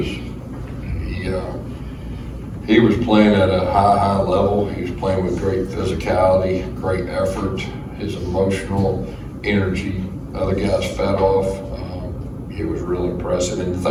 he was playing at a high level. He was playing with great physicality, great effort, his emotional energy. Other guys fed off. It was real impressive. And the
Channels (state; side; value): identical; both; correlation 1.00